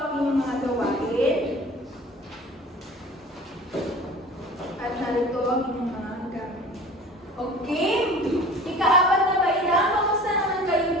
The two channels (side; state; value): both; normal; correlation 0.42